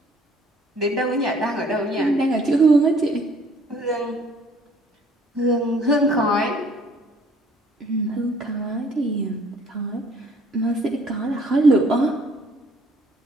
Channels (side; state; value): both; normal; correlation 0.58